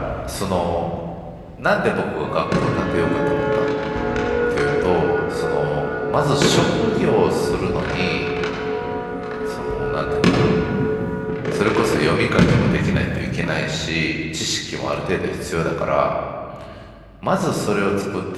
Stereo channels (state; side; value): identical; both; correlation 1.00